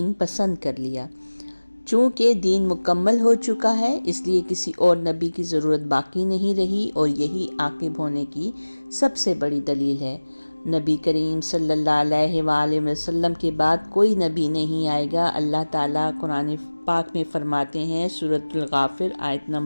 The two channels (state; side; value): inverted; both; correlation -1.00